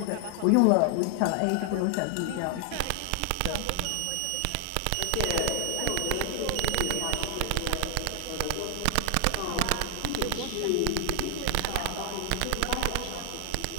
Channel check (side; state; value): both; different; correlation 0.00